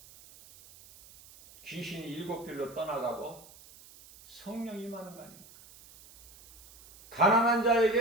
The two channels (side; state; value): right; noise; hiss, 22 dB below the sound